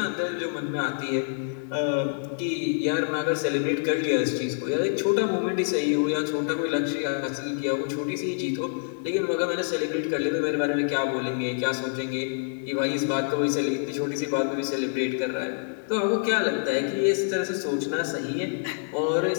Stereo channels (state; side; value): silent; right; digital silence